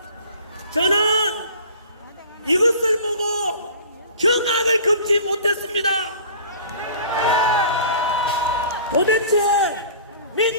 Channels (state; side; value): inverted; both; correlation -0.45